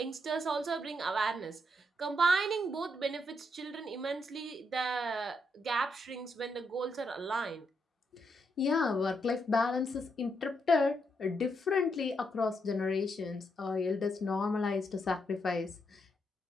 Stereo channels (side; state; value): both; normal; correlation 0.79